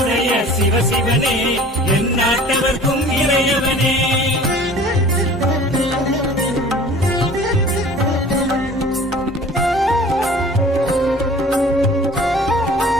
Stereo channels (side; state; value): both; normal; correlation 0.46